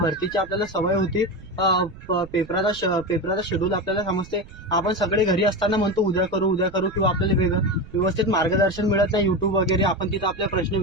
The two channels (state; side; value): noise; right; rumble, 18 dB below the sound